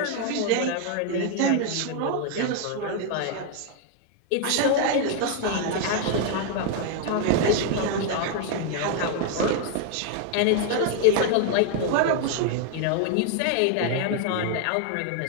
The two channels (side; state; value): both; different; correlation 0.01